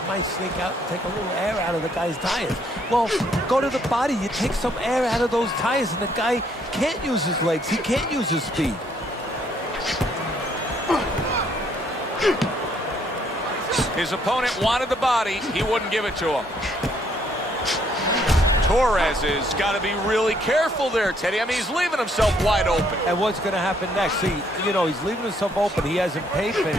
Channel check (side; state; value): both; normal; correlation 0.68